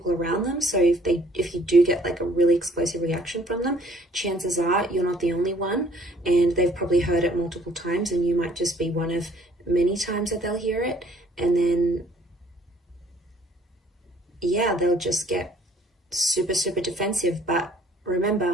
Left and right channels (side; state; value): both; normal; correlation 0.59